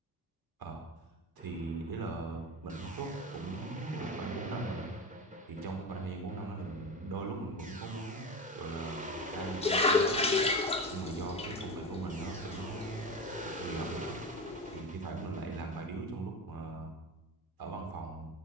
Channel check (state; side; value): normal; both; correlation 0.24